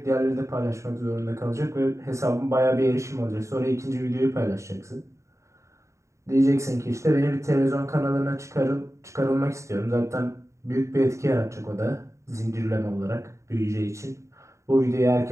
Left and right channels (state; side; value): late; left; 0.14 ms